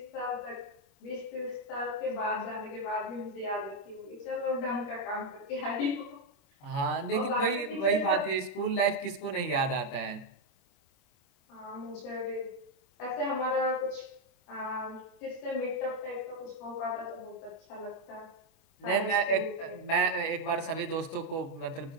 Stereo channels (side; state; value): right; late; 24 ms